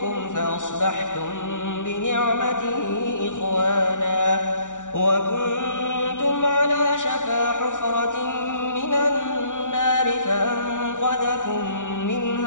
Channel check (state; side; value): late; right; 0.87 ms